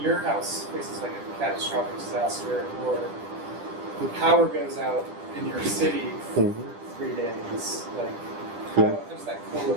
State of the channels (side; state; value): left; late; 10 ms